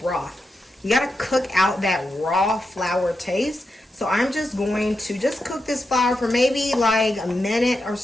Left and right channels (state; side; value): normal; both; correlation 0.87